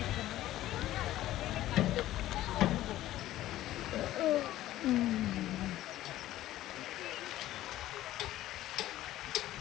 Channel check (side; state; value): right; quieter; 14.5 dB